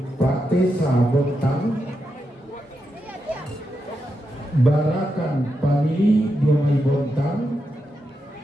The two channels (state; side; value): normal; both; correlation 0.86